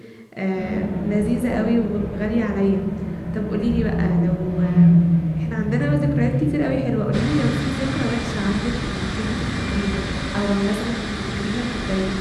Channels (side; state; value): both; identical; correlation 1.00